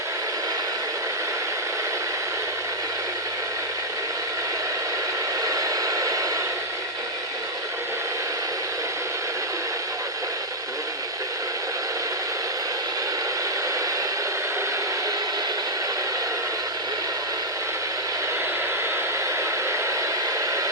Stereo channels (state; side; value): normal; both; correlation -0.04